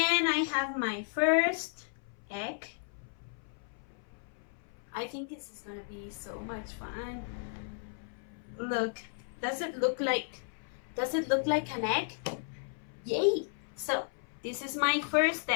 I have my first egg. I think this is gonna be so much fun. Look, does it look like an egg? Yay! So this is my first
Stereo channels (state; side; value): silent; right; 55 dB below the other